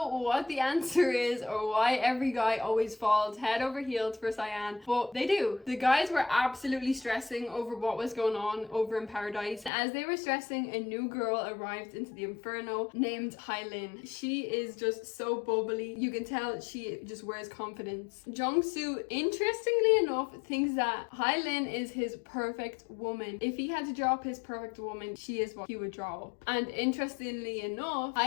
what the answer is or why every guy always falls head over heels for Sayan, but they do. The guys were absolutely stressing over what was going on over in paradise. As they were stressing, a new girl arrived into the Inferno named Hailin. She is just so bubbly. You can tell she just wears confidence. Jung-Soo, interestingly enough, thinks that Hailin is his perfect woman. If he had to draw up his perfect woman, she is what he would draw up. And interestingly enough,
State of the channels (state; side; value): drops out; right; at 9.7 s